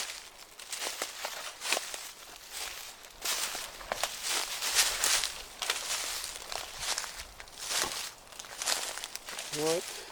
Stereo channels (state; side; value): identical; both; correlation 1.00